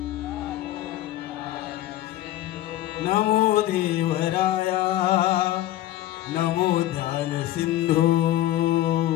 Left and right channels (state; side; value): quieter; right; 14.4 dB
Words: नमो देवराया नमो ध्यान सिंधू